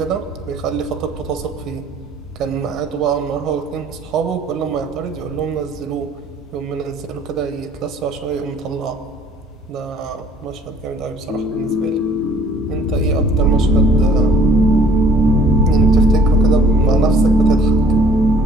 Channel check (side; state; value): both; normal; correlation 0.56